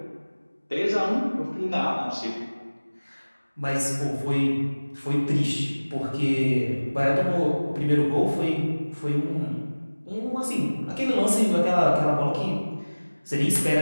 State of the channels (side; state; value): both; inverted; correlation -1.00